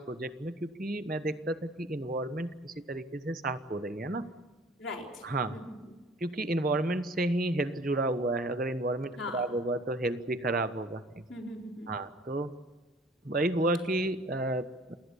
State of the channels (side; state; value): both; normal; correlation 0.51